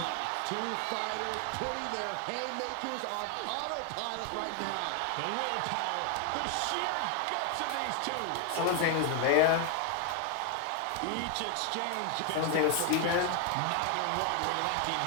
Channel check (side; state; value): both; different; correlation 0.01